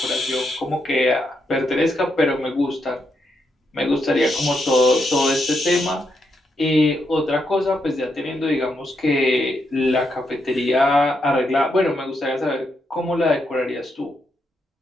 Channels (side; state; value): both; normal; correlation 0.81